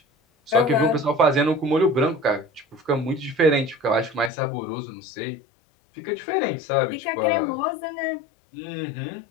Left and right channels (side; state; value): right; drops out; at 4.3 s